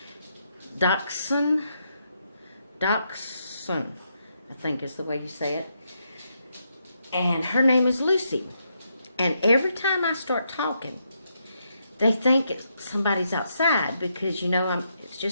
Dachshund, I think is the way you say it, and her name is Lucy. And every time I start talking, they think somebody's outside because, it's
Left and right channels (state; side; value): inverted; both; correlation -0.80